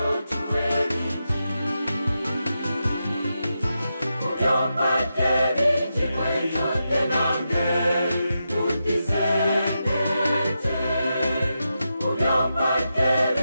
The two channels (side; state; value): both; inverted; correlation -0.87